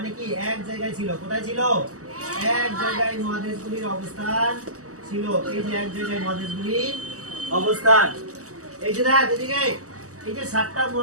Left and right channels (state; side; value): late; left; 0.66 ms